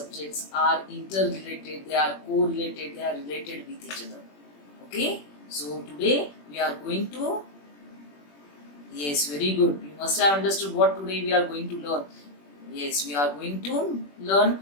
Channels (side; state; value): right; late; 21 ms